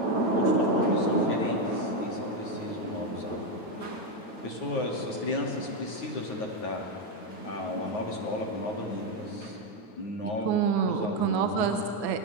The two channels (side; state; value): right; late; 8.9 ms